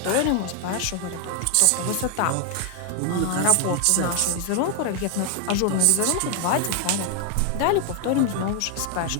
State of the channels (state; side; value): different; both; correlation 0.00